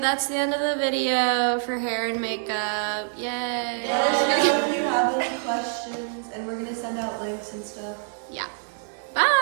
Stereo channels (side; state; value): left; silent; digital silence